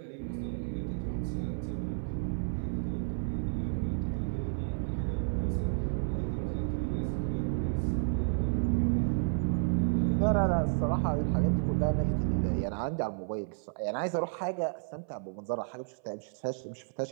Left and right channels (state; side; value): silent; left; 57 dB below the other